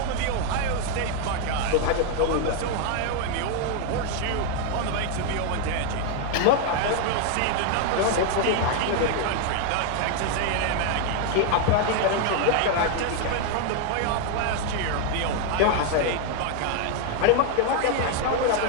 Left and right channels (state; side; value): different; both; correlation 0.01